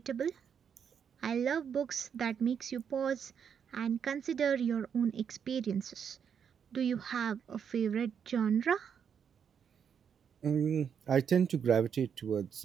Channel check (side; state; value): left; quieter; 7.5 dB